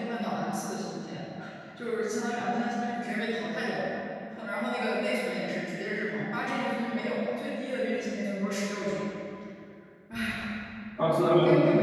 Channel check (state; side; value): identical; both; correlation 1.00